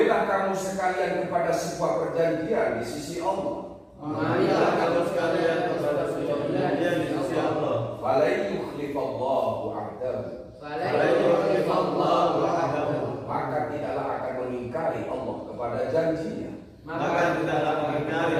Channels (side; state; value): both; identical; correlation 1.00